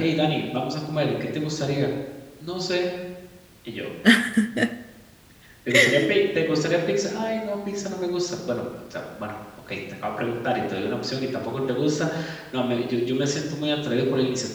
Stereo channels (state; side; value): identical; both; correlation 1.00